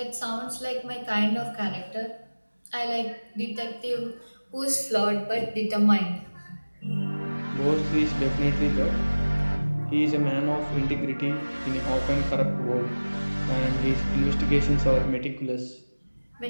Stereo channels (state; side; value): inverted; both; correlation -1.00